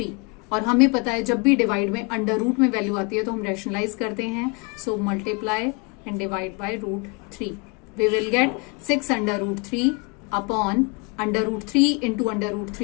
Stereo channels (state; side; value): quieter; right; 30.4 dB